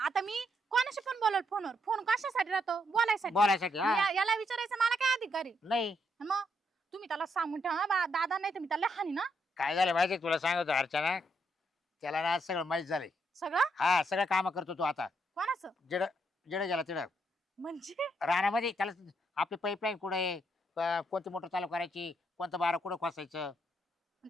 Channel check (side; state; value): both; normal; correlation 0.77